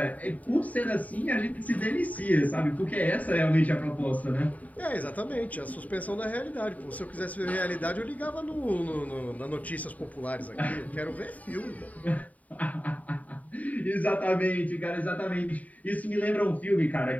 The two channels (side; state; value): right; late; 0.072 ms